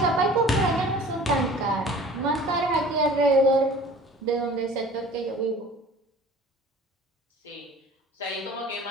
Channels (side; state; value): both; normal; correlation 0.45